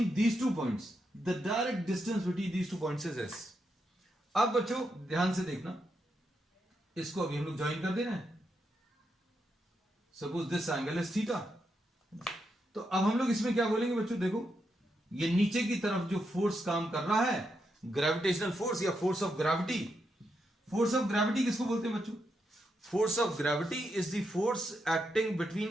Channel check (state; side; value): normal; both; correlation 0.83